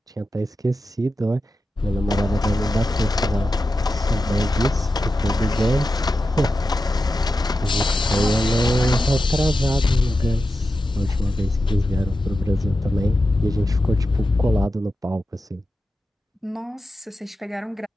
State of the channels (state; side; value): normal; both; correlation 0.91